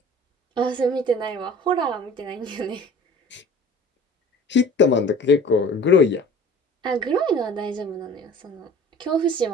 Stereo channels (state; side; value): normal; both; correlation 0.46